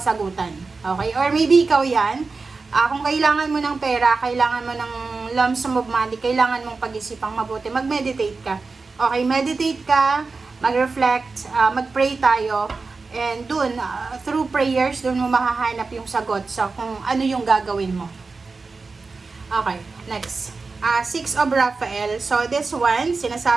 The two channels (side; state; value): left; quieter; 4.2 dB